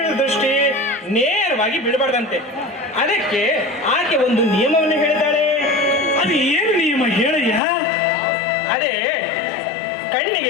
ದೃಷ್ಟಿ ನೇರವಾಗಿ ಬಿಡಬಾರ್ದಂತೆ. ಅದಕ್ಕೆ ಆಕೆ ಒಂದು ನಿಯಮವನ್ನು ಹೇಳಿದ್ದಾಳೆ. ಅದು ಏನು ನಿಯಮ ಹೇಳಯ್ಯ? ಅದೇ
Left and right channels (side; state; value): right; drops out; at 7.6 s